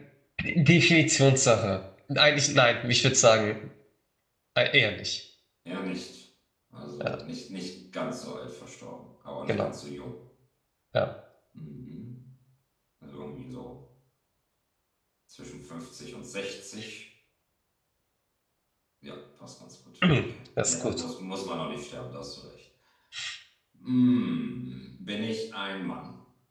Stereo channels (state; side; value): identical; both; correlation 1.00